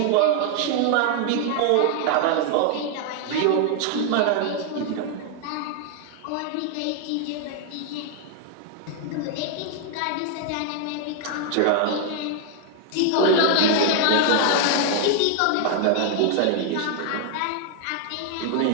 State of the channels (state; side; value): different; both; correlation 0.00